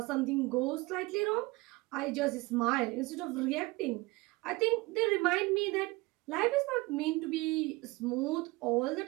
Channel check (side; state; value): left; quieter; 23.1 dB